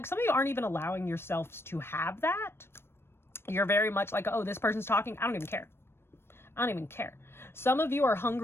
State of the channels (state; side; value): late; right; 0.12 ms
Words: some of you aren't even allowing yourselves to have that. You're very much like, oh, this person's talking, I don't even care. I don't even care. Some of you are